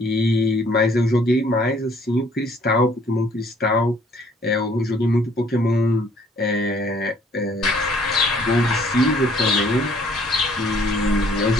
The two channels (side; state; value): both; normal; correlation 0.60